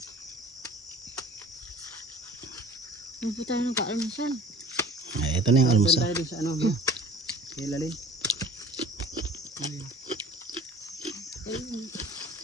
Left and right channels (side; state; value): both; normal; correlation 0.46